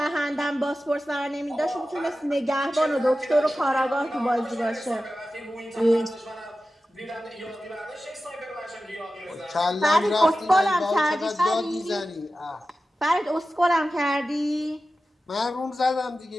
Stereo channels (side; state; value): both; normal; correlation 0.94